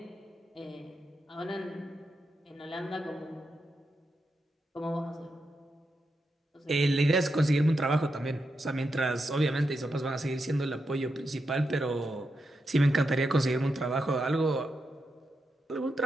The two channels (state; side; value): normal; both; correlation 0.86